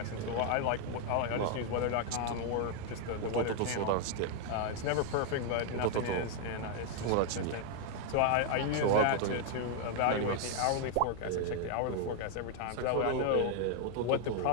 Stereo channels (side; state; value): both; different; correlation 0.00